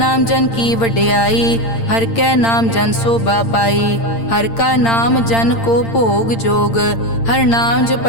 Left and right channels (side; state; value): right; late; 8.8 ms